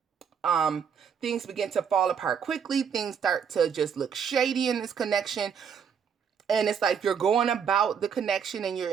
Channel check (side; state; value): left; quieter; 7.2 dB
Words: things begin to fall apart quickly. Things start to just look shady in this connection. And it's like you're going about the connection and you're